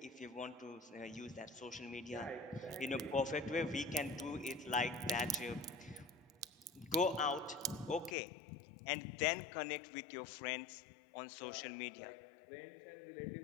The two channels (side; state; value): right; drops out; at 8.2 s